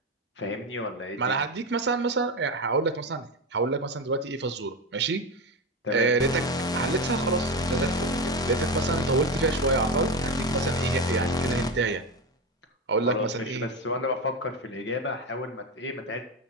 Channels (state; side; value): normal; both; correlation 0.18